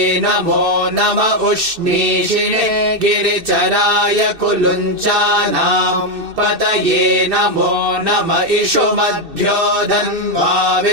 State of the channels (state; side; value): late; left; 2.6 ms